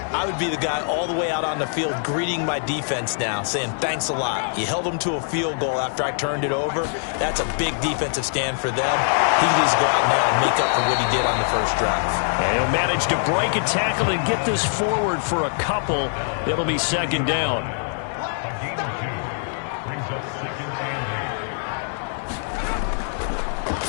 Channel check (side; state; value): right; silent; digital silence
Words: I would be the guy all the way out on the field greeting my defense now, saying thanks a lot. You held them to a field goal after I turned it over. That's a big defensive stand for them. He can just go out now and make up for what he did on the first drive. And he'll manage to break a tackle and get this forward for a couple. It'll be second down.